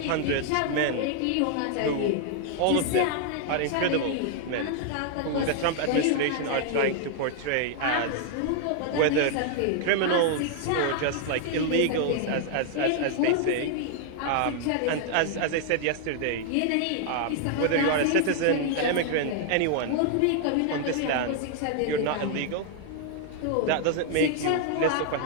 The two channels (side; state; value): both; different; correlation 0.00